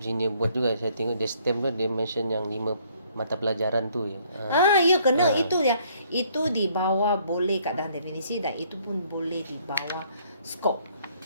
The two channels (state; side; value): inverted; both; correlation -0.64